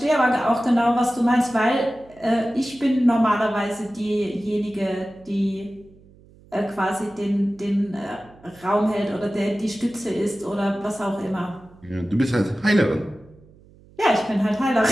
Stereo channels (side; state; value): right; noise; hum, 26 dB below the sound